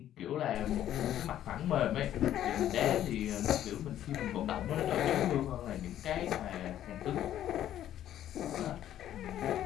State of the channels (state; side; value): quieter; right; 11.7 dB